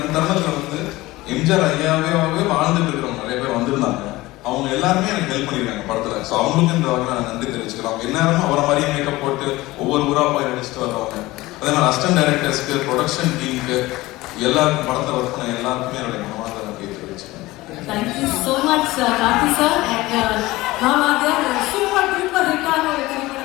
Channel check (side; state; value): right; quieter; 19.2 dB